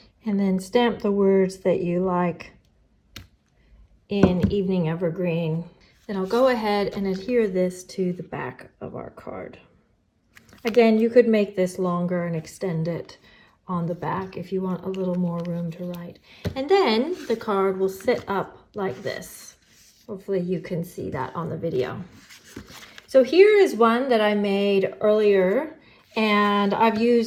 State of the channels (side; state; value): both; identical; correlation 1.00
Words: And then stamp the words that you like in Evening Evergreen. Then I'll go ahead and adhere this to the back of our card. Again, you could make this longer and extend it on the back if you want a little more room to write. And then the card will sit up like this. Hopefully you can see that on the video. So here is one that I made earlier, and I've